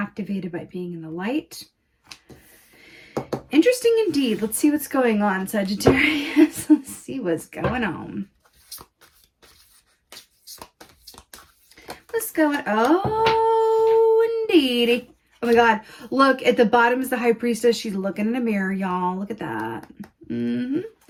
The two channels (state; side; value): identical; both; correlation 1.00